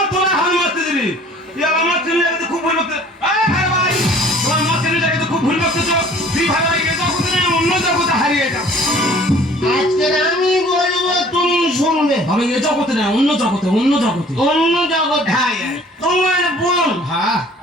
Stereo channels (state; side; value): normal; both; correlation 0.52